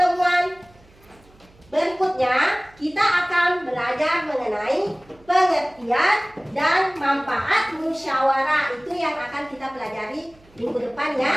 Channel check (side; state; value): right; noise; hum, 28 dB below the sound